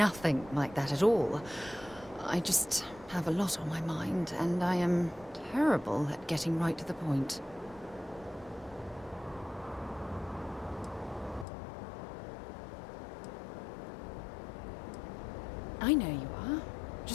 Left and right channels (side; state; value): right; drops out; at 11.5 s